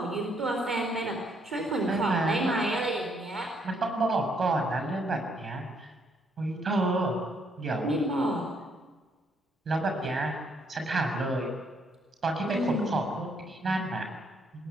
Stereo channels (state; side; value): normal; both; correlation 0.71